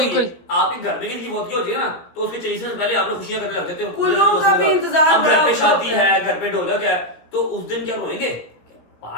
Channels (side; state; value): right; late; 17 ms